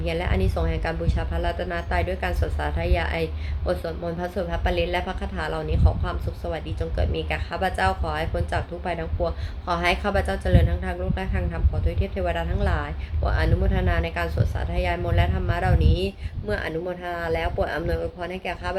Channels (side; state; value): both; identical; correlation 1.00